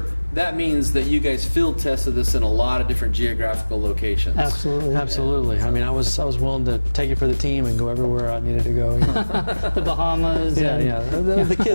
that means that you guys field tested this in a lot of different geographical locations. Absolutely. Absolutely. I mean, I was willing to take it for the team and go everywhere I needed to go. You know. The Bahamas. Yeah. The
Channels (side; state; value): both; inverted; correlation -1.00